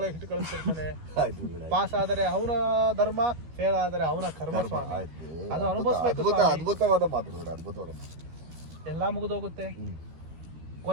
ಇಟ್ಟು ಕಳಿಸ್ತಿರ್ತಾನೆ. ಪಾಸ್ ಆದರೆ ಅವನ ಧರ್ಮ, ಫೇಲ್ ಆದರೆ ಅವನ ಕರ್ಮ ಸ್ವಾಮಿ. ಅದು ಅನುಭವಿಸ್ಬೇಕು. ಅದ್ಭುತವಾದ ಮಾತು, ಅದ್ಭುತವಾದ. ಎಲ್ಲ ಮುಗಿದೋಗುತ್ತೆ.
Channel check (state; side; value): late; left; 13 ms